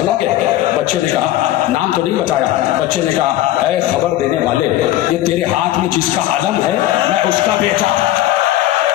گے؟ بچے نے کہا نام تو نہیں بتایا. بچے نے کہا اے خبر دینے والے, یہ تیرے ہاتھ میں جس کا علم ہے میں اس کا بیٹا.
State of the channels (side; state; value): right; quieter; 14.4 dB